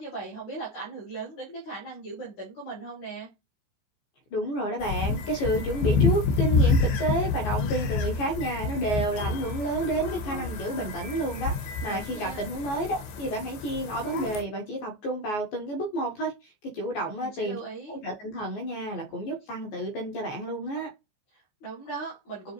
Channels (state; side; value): late; right; 14 ms